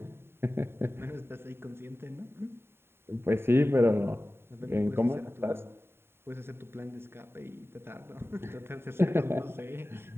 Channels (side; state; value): left; late; 0.11 ms